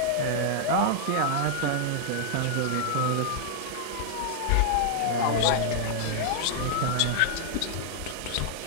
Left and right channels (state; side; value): different; both; correlation -0.01